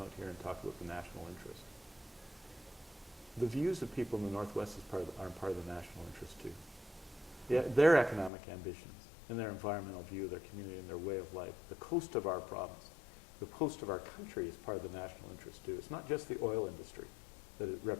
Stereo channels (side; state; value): right; drops out; at 8.3 s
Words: here and talk about the national interest. The views of people in the Northwest are part of the national interest too. Yeah, their economic ambitions and their environmental view, their community and their way of life, the coast of our province, the coast of our country is part of the national interest too. It's not just the oil industry that it